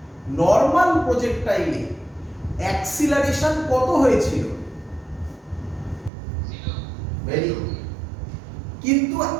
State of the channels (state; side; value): drops out; left; at 6.1 s